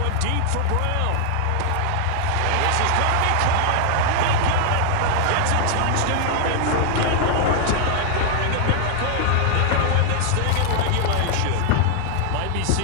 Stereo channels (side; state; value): both; different; correlation 0.00